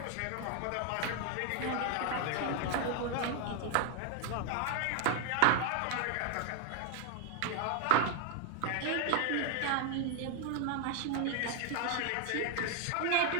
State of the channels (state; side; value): different; both; correlation 0.00